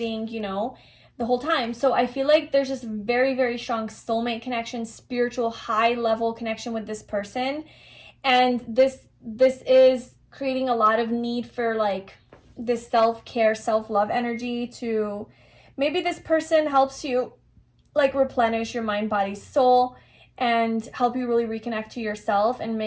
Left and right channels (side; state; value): both; identical; correlation 1.00